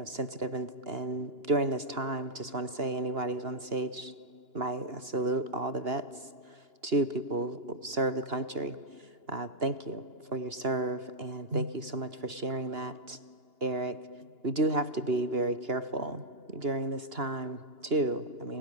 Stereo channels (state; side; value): late; left; 2.9 ms